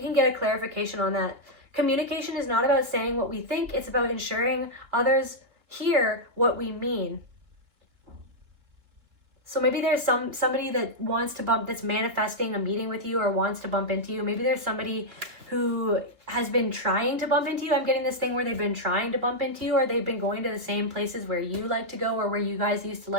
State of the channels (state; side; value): late; left; 2.8 ms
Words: get a clarification on that. Communication is not about saying what we think. It's about ensuring others hear what we mean. So maybe there's somebody that wants to that's manifesting a meeting with you or wants to bump into you. Maybe there's somebody who has been trying to bump into you. I'm getting this thing where they've been trying to bump into you, or they've been going to the same places where you like to go, or where you guys used to